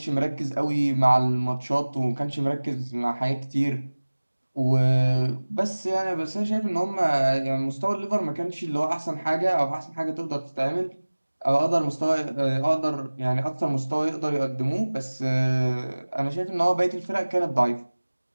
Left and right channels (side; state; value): both; inverted; correlation -1.00